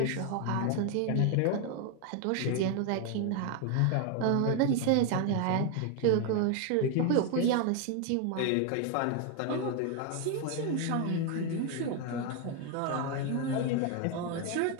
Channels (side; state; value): both; different; correlation 0.01